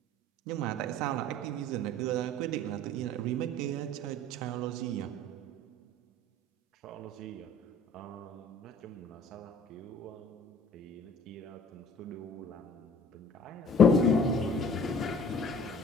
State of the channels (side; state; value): both; normal; correlation 0.50